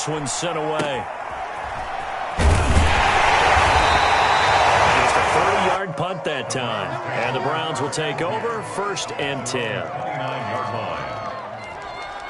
one's sent away. Punt that time. And the Browns will take over 1st and 10. 29-yard line.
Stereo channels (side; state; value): both; identical; correlation 1.00